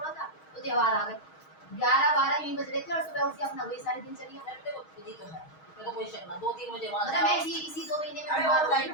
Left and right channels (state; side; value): late; right; 6.3 ms